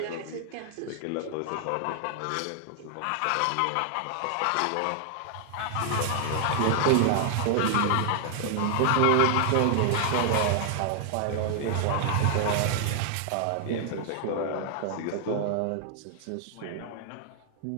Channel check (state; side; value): different; both; correlation 0.00